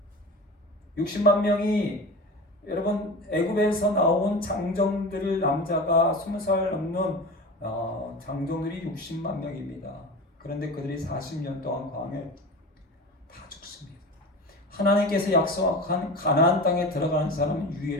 60만 명이 여러분 애굽에서 나온 장정들 남자가 20살 넘는 장정들이 60만 명입니다. 그런데 그들이 40년 동안 광야에 다 죽습니다. 하나님께서 약속한 가나안 땅에 들어가는 사람은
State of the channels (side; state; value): both; normal; correlation 0.31